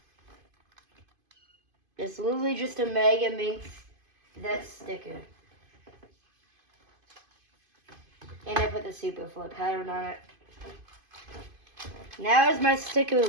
It's literally just a Megaminx that's stickered. And I put the Super Flip pattern on it. Now is my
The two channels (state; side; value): late; left; 2.5 ms